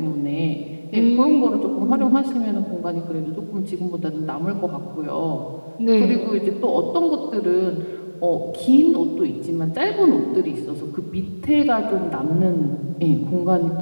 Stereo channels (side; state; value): both; inverted; correlation -1.00